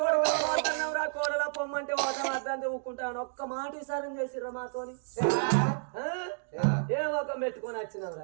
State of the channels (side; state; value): left; silent; digital silence